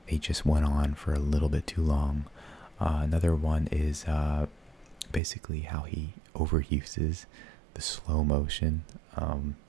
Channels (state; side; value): drops out; left; at 5.2 s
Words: they just went on for a little bit too long. Another one is basically how he overuses the slow motion.